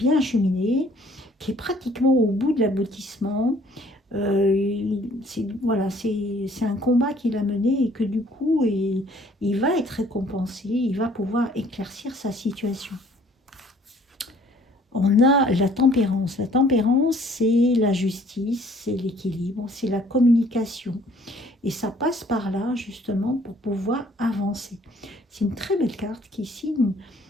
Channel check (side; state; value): both; normal; correlation 0.58